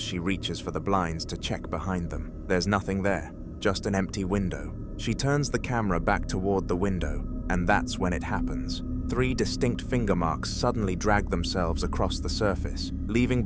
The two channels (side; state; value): both; identical; correlation 1.00